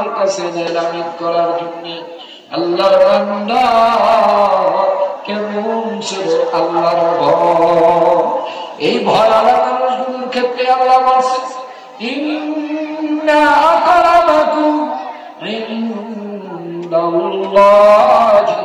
কাছে নেই লামিত করার জন্য আল্লাহর বান্দা কেমন ছিল আল্লাহর ভয় এই ভয় আল্লাহ মানুষগুলোর ক্ষেত্রে আল্লাহ বলছে ইন্না আকরামাকুম ইনদাল্লাহি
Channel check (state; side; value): identical; both; correlation 1.00